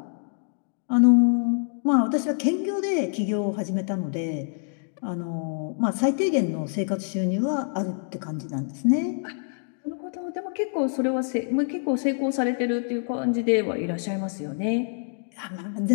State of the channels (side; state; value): right; silent; digital silence